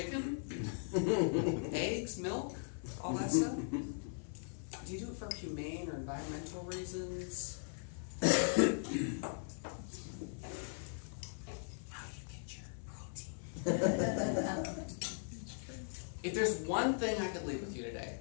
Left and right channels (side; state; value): right; silent; 52 dB below the other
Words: eggs, milk, all that stuff? Do you do it for humane or environmental reasons? How do you get your protein? If there's one thing I could leave with you today,